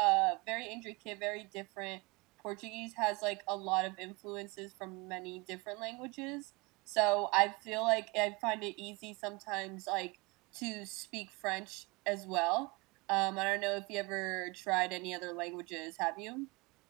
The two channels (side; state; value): left; quieter; 26.6 dB